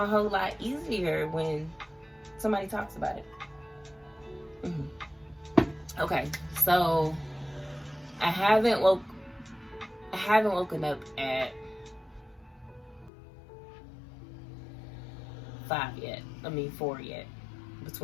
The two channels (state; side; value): drops out; right; at 13.1 s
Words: whole lot easier when somebody talks about it. Okay, so I haven't woken up at 4 yet,